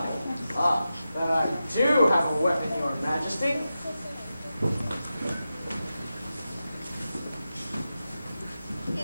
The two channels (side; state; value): both; inverted; correlation -0.92